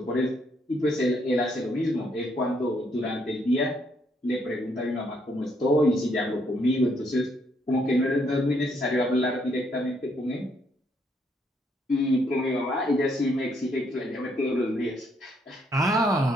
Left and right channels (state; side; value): normal; both; correlation 0.72